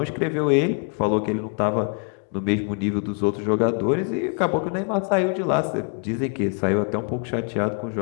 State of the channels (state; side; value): quieter; right; 39.8 dB